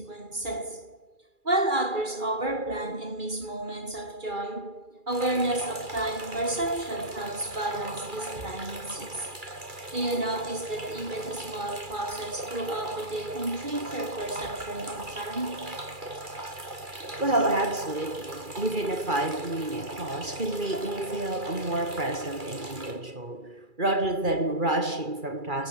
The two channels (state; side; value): late; left; 2.3 ms